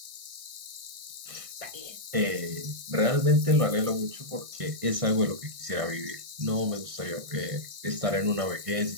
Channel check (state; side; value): late; left; 1.6 ms